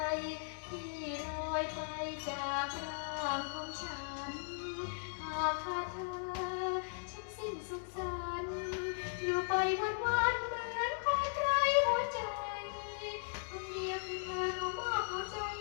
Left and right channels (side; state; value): right; silent; digital silence